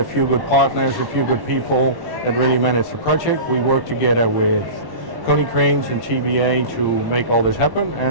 few good partners, a few good people that really managed the project. We worked together with Konecranes and TBA to make all this happen,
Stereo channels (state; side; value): late; left; 1.1 ms